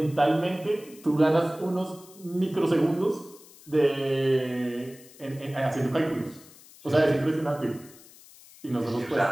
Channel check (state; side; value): noise; left; hiss, 22 dB below the sound